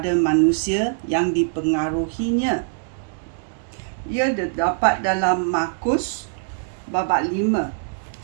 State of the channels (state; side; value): silent; left; digital silence